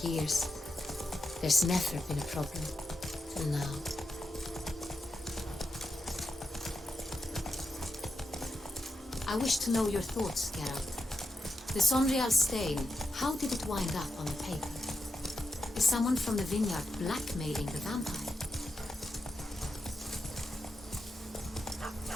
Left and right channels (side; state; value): both; normal; correlation 0.87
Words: years. There's never been a problem, till now. I wish to know your thoughts, Geralt. The Sonreal stain, how did it wind up on the paper? Is someone from the vineyard blackmailing the vampire?